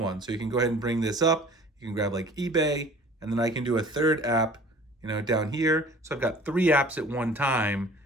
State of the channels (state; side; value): normal; both; correlation 0.47